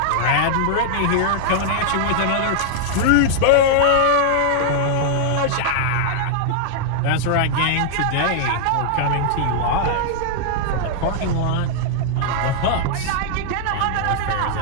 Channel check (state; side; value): different; both; correlation -0.01